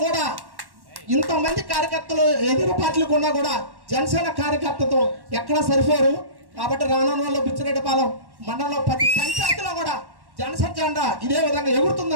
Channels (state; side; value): late; left; 1.1 ms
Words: కూడా ఇంతమంది కార్యకర్తలు ఎదురు పార్టీలకు ఉన్నా కూడా జనసేన కార్యకర్తతో ఎక్కడ సరిపోరు. కాబట్టి రానున్న బుచ్చిరెడ్డిపాలెం మండలంలో ప్రతి పంచాయతీలో కూడా జనసేన జెండా ఇదే విధంగా